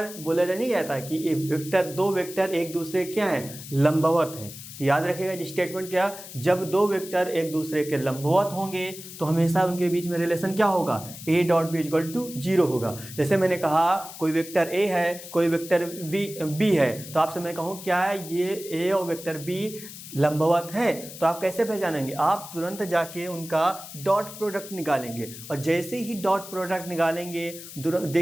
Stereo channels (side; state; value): left; noise; hiss, 13 dB below the sound